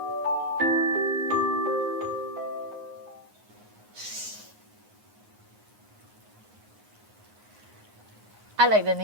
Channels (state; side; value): late; left; 9.5 ms